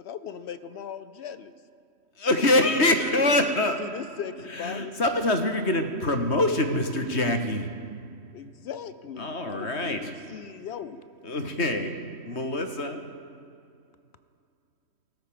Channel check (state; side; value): late; right; 3.2 ms